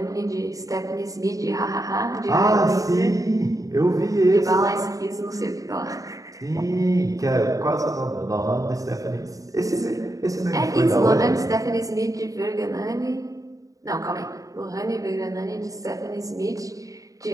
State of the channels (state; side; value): late; left; 0.16 ms